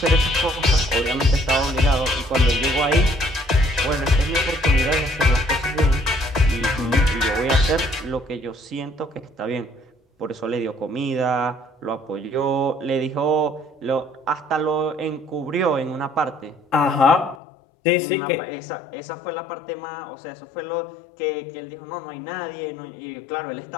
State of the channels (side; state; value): right; drops out; at 17.4 s